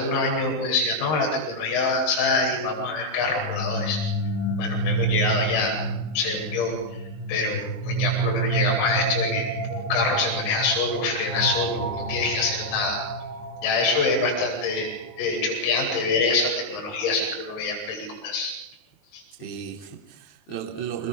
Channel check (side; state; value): right; late; 19 ms